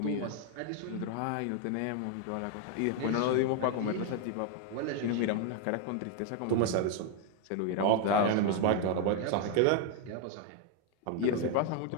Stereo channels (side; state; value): both; different; correlation 0.01